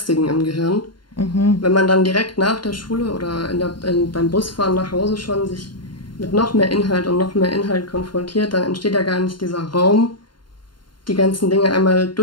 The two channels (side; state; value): right; late; 0.72 ms